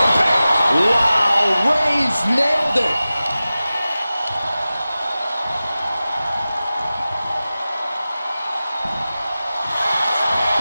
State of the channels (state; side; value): inverted; both; correlation -0.96